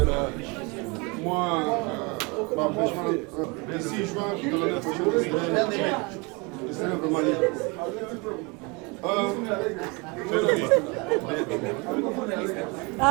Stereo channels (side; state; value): left; quieter; 28.8 dB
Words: mwa baempêchement d'ici juin de l'année prochaine je serai vraiment libre.